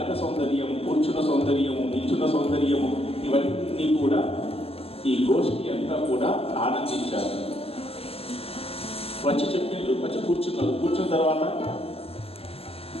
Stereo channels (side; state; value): right; late; 0.28 ms